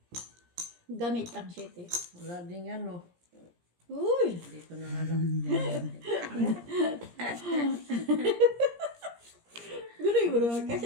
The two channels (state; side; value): late; left; 17 ms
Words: Gamit ang 7. Wala din yan, oh. Uy! Dito na nga lang. Biro, kasi